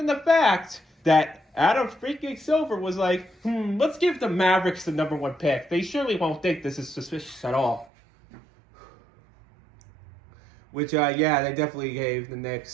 the fact that Adam freaking Silver was like, let's give the Mavericks the number 1 pick, they surely won't think this is suspicious at all. Which, they definitely gave the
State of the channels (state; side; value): drops out; left; at 7.9 s